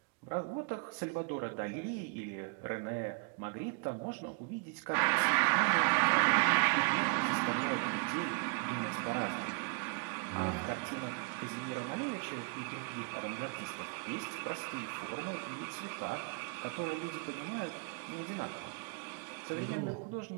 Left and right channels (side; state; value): left; quieter; 32.5 dB